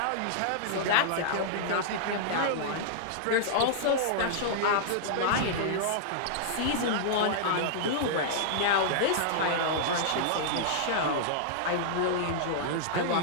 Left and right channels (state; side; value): different; both; correlation -0.01